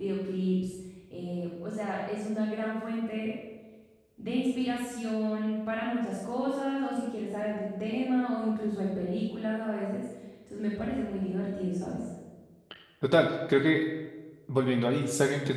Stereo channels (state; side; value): identical; both; correlation 1.00